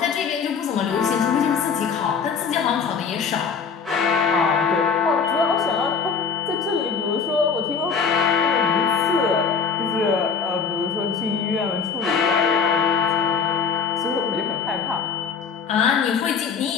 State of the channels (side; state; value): right; quieter; 5.9 dB